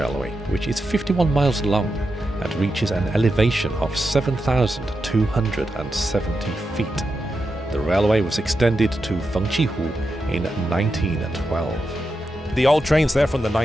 which is 51 miles long and reaches an elevation of 7,270 feet. The railway was extended to Fengqihu in 1912. The old trains there from the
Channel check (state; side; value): normal; both; correlation 0.88